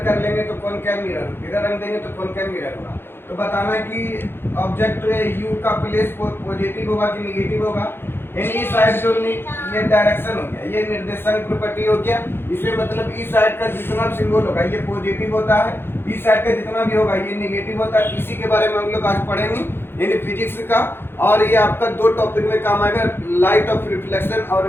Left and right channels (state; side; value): late; right; 0.11 ms